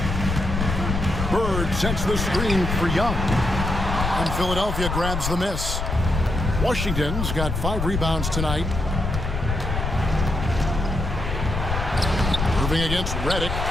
Bird sets the screen for Young. And Philadelphia grabs the miss. Washington's got 5 rebounds tonight. Moving against Reddick.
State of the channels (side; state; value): left; noise; rumble, 3 dB below the sound